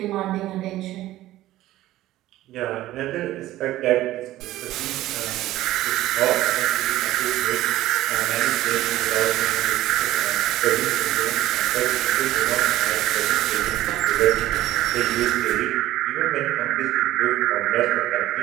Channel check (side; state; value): left; quieter; 15.2 dB